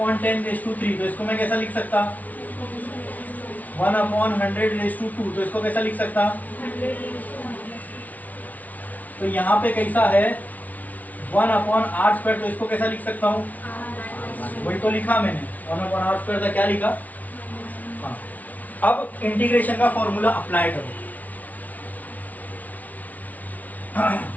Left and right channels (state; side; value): late; right; 0.074 ms